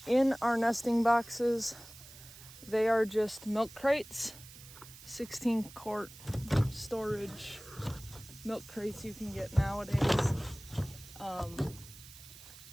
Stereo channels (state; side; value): noise; right; hiss, 18 dB below the sound